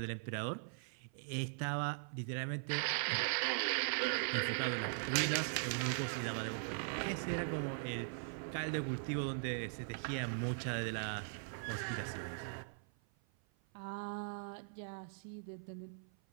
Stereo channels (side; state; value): left; silent; 51 dB below the other